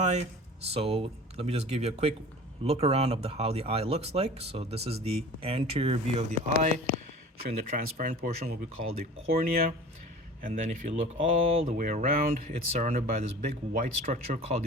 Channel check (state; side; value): normal; both; correlation 0.41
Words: So let me just give you a quick look around of how the eye looks like. So this is the anterior view of the eye, showing the transparent portion, what we call the cornea. And then if you look all the way around, it's surrounded by this big white structure called